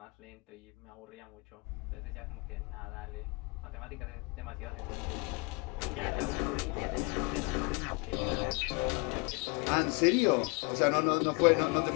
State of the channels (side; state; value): right; quieter; 29.6 dB